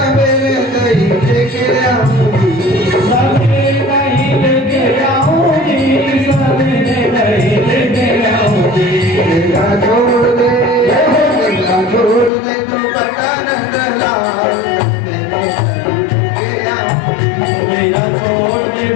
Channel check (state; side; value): drops out; right; at 12.3 s